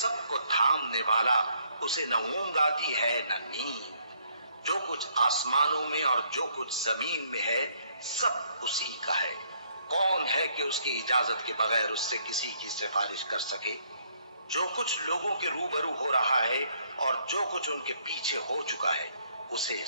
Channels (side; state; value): both; inverted; correlation -0.67